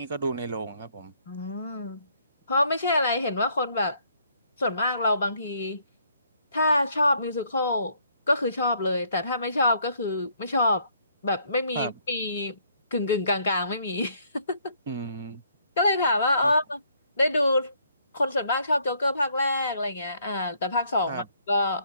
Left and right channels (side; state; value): both; inverted; correlation -0.67